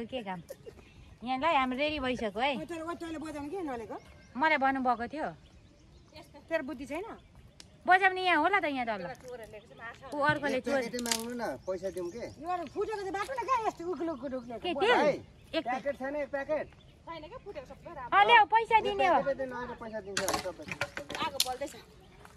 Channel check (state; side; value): identical; both; correlation 1.00